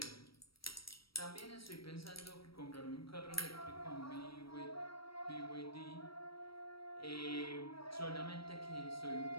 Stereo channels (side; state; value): right; late; 0.75 ms